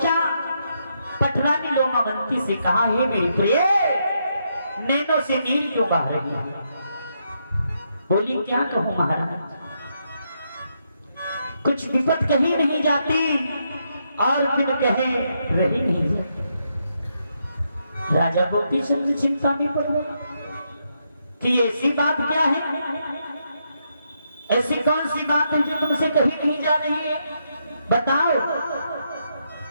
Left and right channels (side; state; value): both; inverted; correlation -0.79